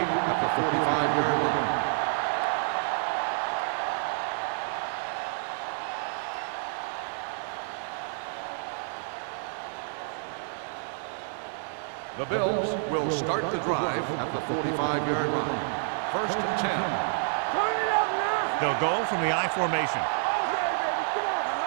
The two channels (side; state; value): left; silent; digital silence